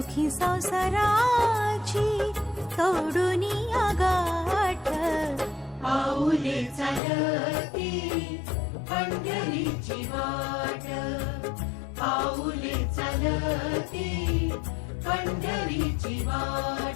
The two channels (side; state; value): right; drops out; at 7.0 s